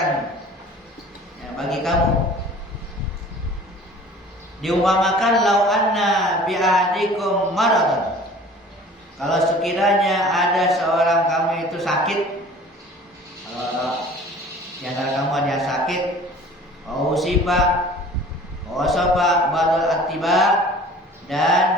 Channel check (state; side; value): normal; both; correlation 0.46